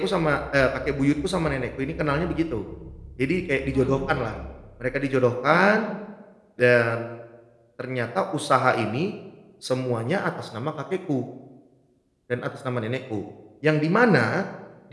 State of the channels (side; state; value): both; identical; correlation 1.00